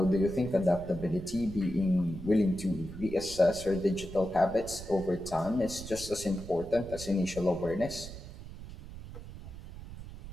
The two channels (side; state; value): right; noise; rumble, 13 dB below the sound